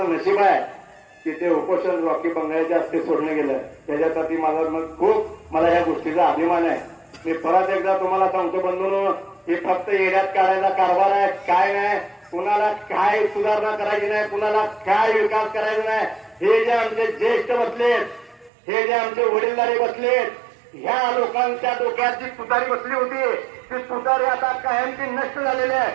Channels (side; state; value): left; drops out; at 18.5 s